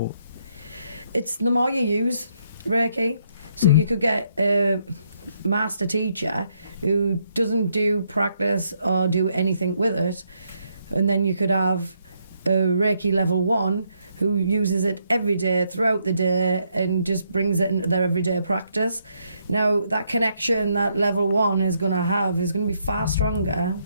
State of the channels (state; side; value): inverted; both; correlation -0.74